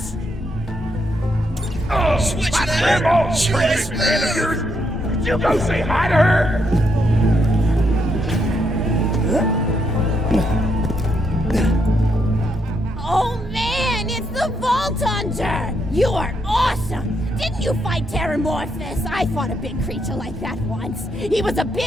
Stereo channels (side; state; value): both; normal; correlation 0.78